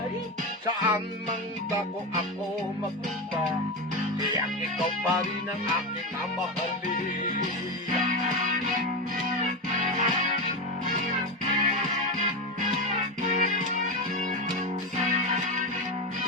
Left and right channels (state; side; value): normal; both; correlation 0.16